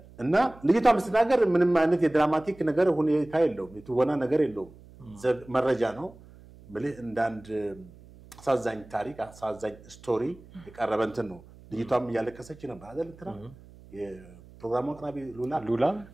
እና ልጅቷ ምስተናገር ምንም አይነት የድራማቲክ ነገር ሁኔታ የለውም የትወና ነገር የለውም መረጃ ነው ማለት እንደ አንድ አሳዛኝ ታሪክ አሳዛኝ ስቶሪ የቀረበ እንትን ነው ልጅቷም እያለቀሰች ነበር አይደል እንትና የፕሮግራሙ አቅራቢ ሉላ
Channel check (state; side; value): noise; right; hum, 22 dB below the sound